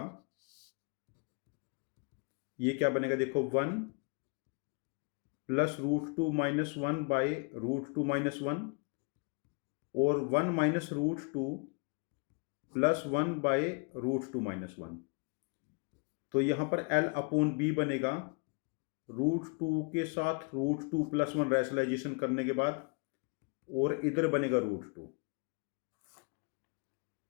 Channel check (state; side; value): quieter; right; 34.0 dB